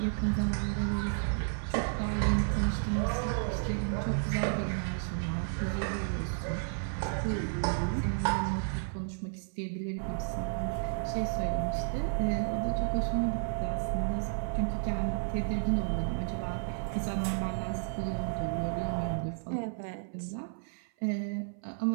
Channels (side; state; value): left; silent; 56 dB below the other